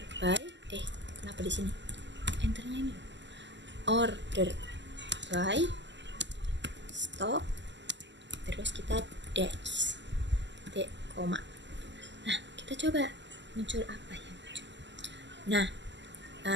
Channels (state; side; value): late; left; 0.53 ms